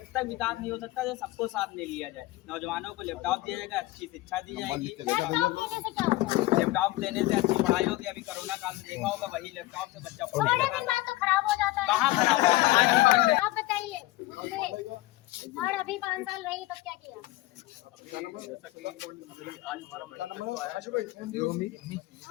तक विकास नहीं हो सकता तो सबको साथ में लिया जाए। नौजवानों को लैपटॉप दिया जाएगा, अच्छी शिक्षा दी जाएगी। लैपटॉप देने से अच्छी पढ़ाई होगी। अभी कोरोना काल में देखा होगा, वही लैपटॉप से बच्चा पढ़ेगा। तो खराब हो जाता है। कहाँ खराब होगा? आप बताइए मुझे, और अभी 5 साल रही तब क्या किया?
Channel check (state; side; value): quieter; right; 18.5 dB